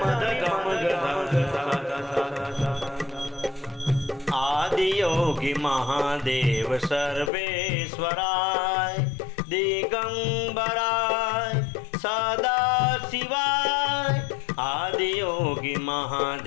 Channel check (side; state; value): right; drops out; at 7.3 s